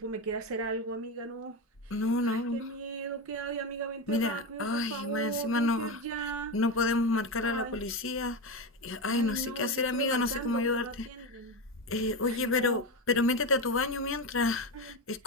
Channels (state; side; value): normal; both; correlation 0.16